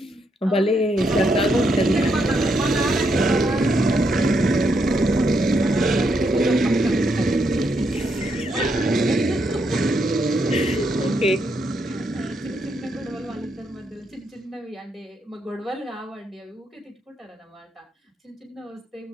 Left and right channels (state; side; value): normal; both; correlation 0.78